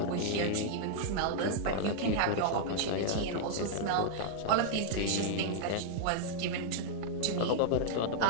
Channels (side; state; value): both; different; correlation -0.01